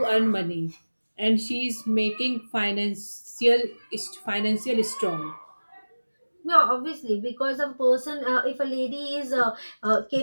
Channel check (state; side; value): inverted; both; correlation -1.00